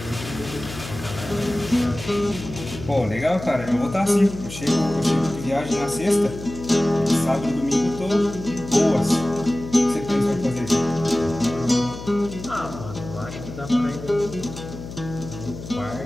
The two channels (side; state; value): left; noise; hum, 11 dB below the sound